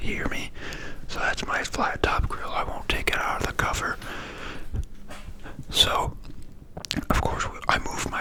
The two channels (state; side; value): identical; both; correlation 1.00